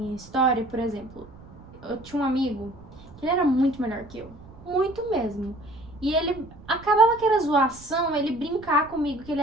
história, por exemplo, eu tinha um amigo que ele era muito melhor que eu. Muito mesmo. E ele acabava que era zoação, ele brincar comigo que ele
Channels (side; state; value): right; noise; rumble, 20 dB below the sound